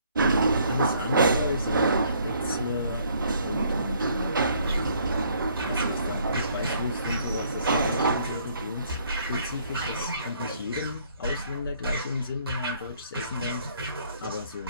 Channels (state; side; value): inverted; both; correlation -0.64